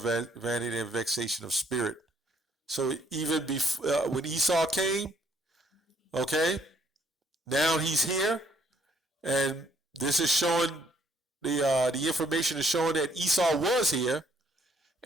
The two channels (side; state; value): both; normal; correlation 0.66